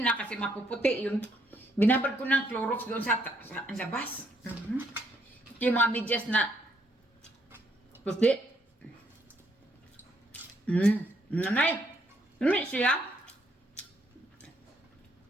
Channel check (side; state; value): both; normal; correlation 0.71